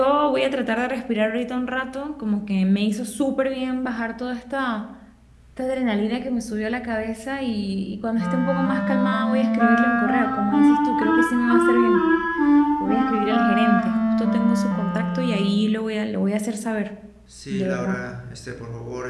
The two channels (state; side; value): identical; both; correlation 1.00